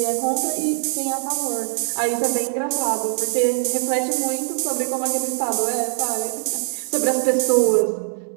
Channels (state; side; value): silent; left; digital silence